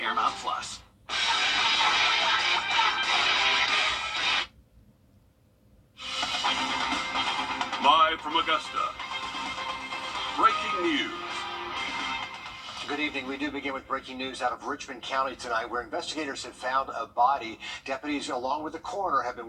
Plus. Live from Augusta, breaking news. Good evening. We do begin with breaking news out of Richmond County tonight, where investigators have found a body. Deputies, along with the coroner, have been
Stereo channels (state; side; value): identical; both; correlation 1.00